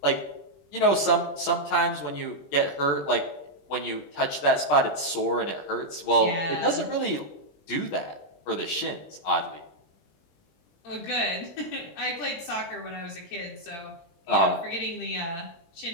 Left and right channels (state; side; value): late; right; 20 ms